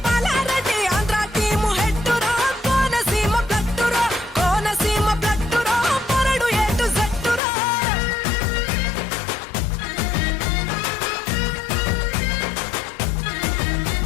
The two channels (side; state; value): right; drops out; at 7.4 s